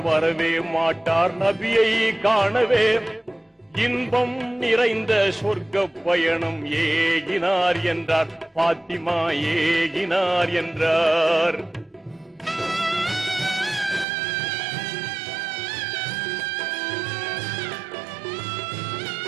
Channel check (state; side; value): drops out; left; at 14.1 s